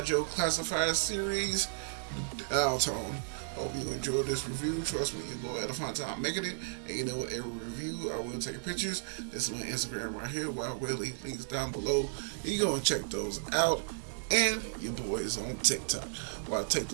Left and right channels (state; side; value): silent; left; 55 dB below the other